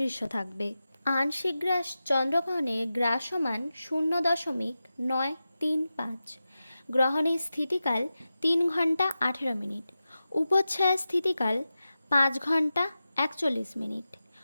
থাকবে। আংশিক গ্রাস চন্দ্রগ্রহণের গ্রাসমান 0.935। গ্রহণের স্থিতিকাল 3 ঘন্টা 18 মিনিট। উপচ্ছায়া স্থিতিকাল 5 ঘন্টা 41 মিনিট।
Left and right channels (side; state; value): both; inverted; correlation -0.93